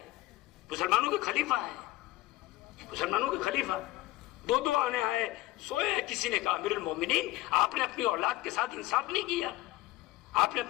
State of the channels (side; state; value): right; quieter; 17.9 dB